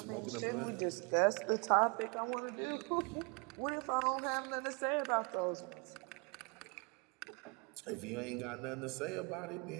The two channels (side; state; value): left; quieter; 32.5 dB